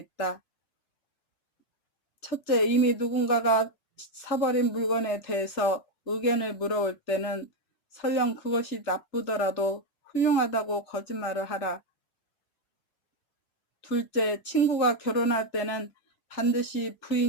첫째, 이미 누군가가 사버린 물건에 대해서 의견을 물어올 때는 설령 그것이 나쁘더라도 훌륭하다고 거짓말을 하라. 둘째, 친구가 결혼할 때는 반드시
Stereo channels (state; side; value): late; right; 3.3 ms